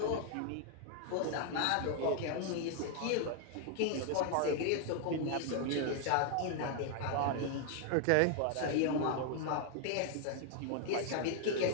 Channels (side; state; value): both; different; correlation 0.00